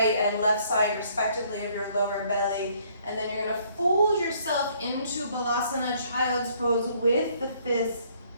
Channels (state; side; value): inverted; both; correlation -0.64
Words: and left side respectively of your lower belly, and then you're going to fold yourself into Balasana, child's pose, with the fists